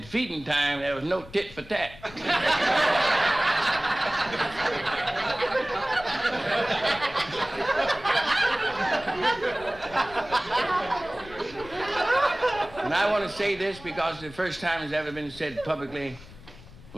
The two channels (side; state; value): left; noise; rumble, 19 dB below the sound